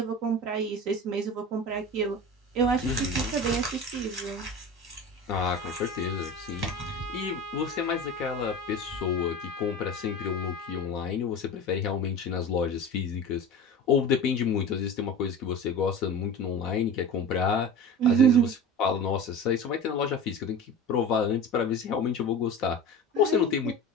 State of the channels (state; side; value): normal; both; correlation 0.32